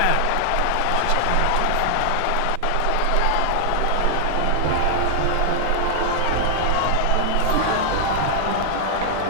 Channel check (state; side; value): different; both; correlation 0.00